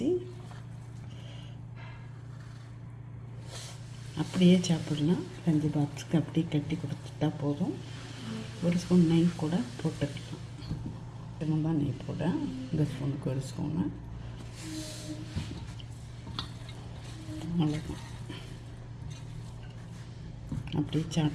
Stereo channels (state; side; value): identical; both; correlation 1.00